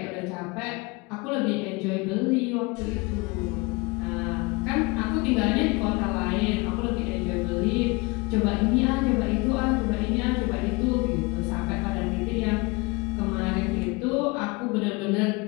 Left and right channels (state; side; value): quieter; right; 26.1 dB